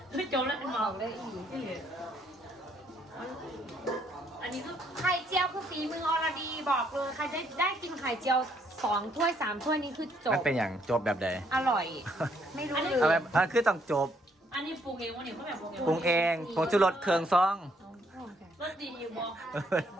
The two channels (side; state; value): both; normal; correlation 0.69